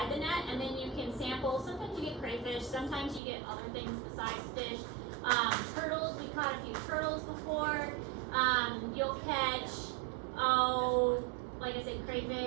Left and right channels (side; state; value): left; drops out; at 3.2 s